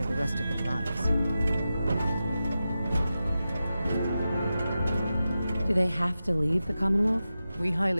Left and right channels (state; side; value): inverted; both; correlation -0.92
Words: for the rest of their lives. Do they have to leave the Commonwealth? We